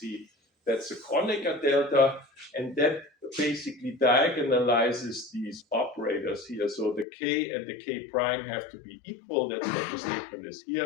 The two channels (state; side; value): drops out; right; at 7.1 s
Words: that's a Kronecker delta, and that basically diagonalizes these operators here. So the k and the k prime have to be equal. That's what the statement is